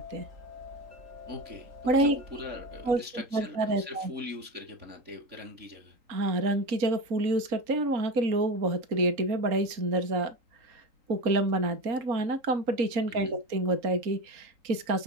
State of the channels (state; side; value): late; left; 3.8 ms